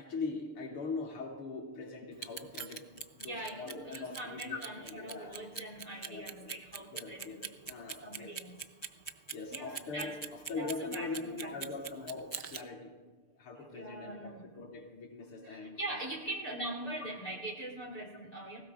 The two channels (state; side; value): late; right; 6.7 ms